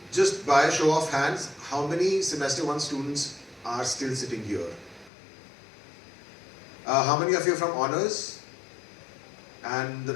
just by a show of hands, how many semester 1 students are still sitting here? How many of you are from honors and the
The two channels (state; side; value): drops out; right; at 5.1 s